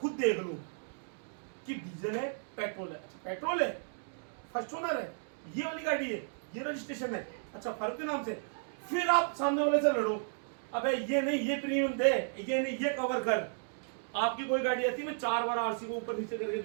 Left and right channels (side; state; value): left; silent; digital silence